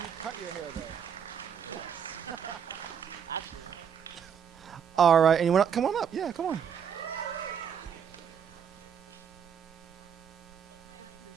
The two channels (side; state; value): left; quieter; 7.7 dB